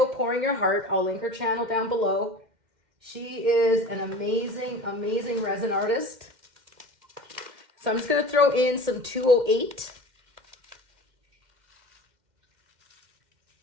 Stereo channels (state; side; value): late; left; 2.1 ms